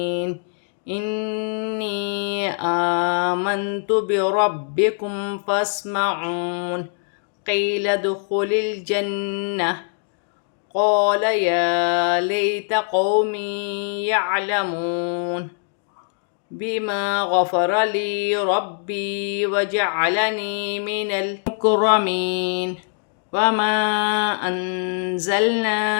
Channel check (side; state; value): right; silent; 63 dB below the other